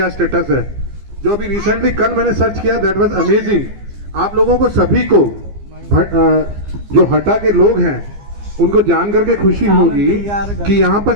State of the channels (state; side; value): late; left; 15 ms